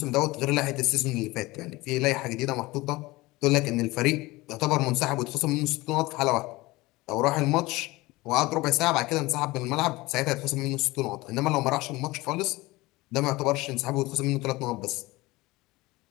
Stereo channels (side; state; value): right; quieter; 20.8 dB